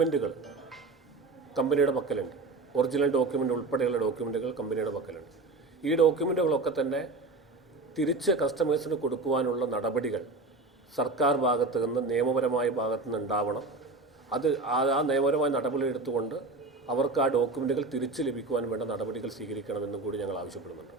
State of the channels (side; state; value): left; quieter; 3.5 dB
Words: കമ്പനിയുടെ പക്കലുണ്ട്. ഒറിജിനൽ ഡോക്യുമെൻ്റ് ഉൾപ്പെടെയുള്ള ഡോക്യുമെൻറ്റുകൾ കമ്പനിയുടെ പക്കലുണ്ട്. ഈ ഡോക്യുമെൻറ്റുകളൊക്കെ തന്നെ തിരിച്ച് കസ്റ്റമേഴ്സിന് കൊടുക്കുവാനുള്ള നടപടികൾ സർക്കാർ ഭാഗത്ത് നിന്ന് നിയമപരമായ ഭാഗത്തു നിന്ന് ഉണ്ടാവണം. ആ നിയമപരമായ നടപടി എടുത്തുകൊണ്ട് അവർക്ക് ആ ഡോക്യുമെൻറ്റുകൾ തിരിച്ച് ലഭിക്കുവാൻ വേണ്ട നടപടികൾ സ്വീകരിക്കണമെന്നും കൂടി ഞങ്ങൾ ആവശ്യപ്പെടുന്നുണ്ട്.